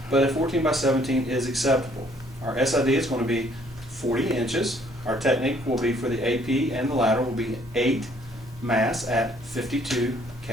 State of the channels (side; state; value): both; normal; correlation 0.63